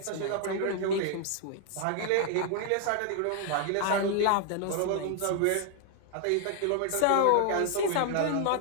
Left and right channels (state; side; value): different; both; correlation 0.00